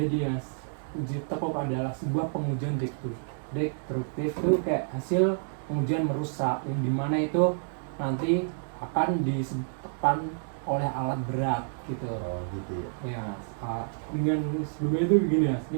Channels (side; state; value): left; silent; digital silence